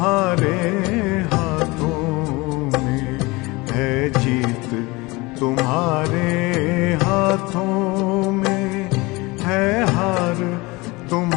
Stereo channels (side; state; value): right; quieter; 23.5 dB